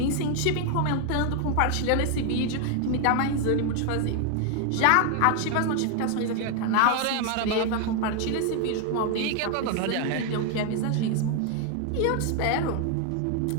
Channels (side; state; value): both; different; correlation 0.00